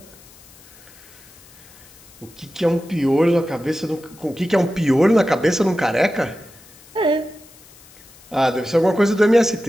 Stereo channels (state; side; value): noise; left; hiss, 24 dB below the sound